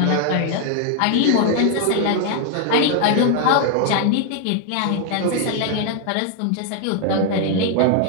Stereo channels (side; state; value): both; different; correlation 0.00